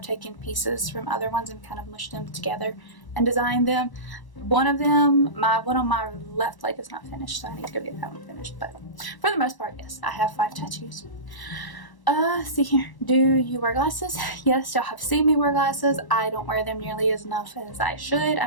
taken pieces from other ones and kind of mushed them together and designed them. One of them, my one on my left leg is not finished, so I need to go get that one finished. But for the most part, yes, I have 5 tattoos. See here. Do you wear glasses? Yes, y'all have seen me wear glasses. I don't wear them nearly as enough as I should.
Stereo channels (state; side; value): late; right; 1.0 ms